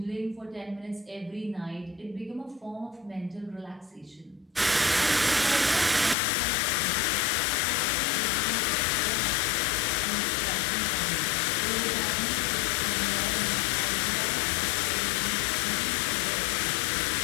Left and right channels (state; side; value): drops out; right; at 6.2 s